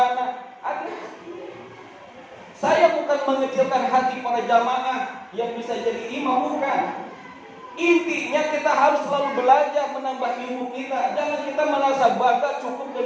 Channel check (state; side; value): identical; both; correlation 1.00